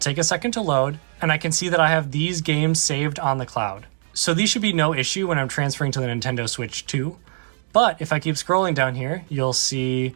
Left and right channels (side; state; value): left; silent; digital silence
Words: a second to load and I can see that I have these games saved on the cloud. So these should be no issue when I'm transferring to the Nintendo Switch 2. But if I keep scrolling down here, you'll see